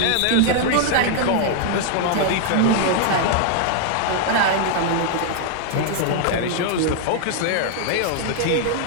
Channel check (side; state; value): both; different; correlation 0.00